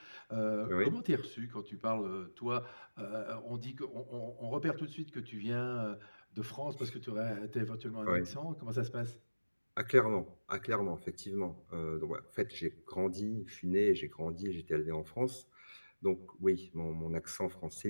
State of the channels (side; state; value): both; inverted; correlation -1.00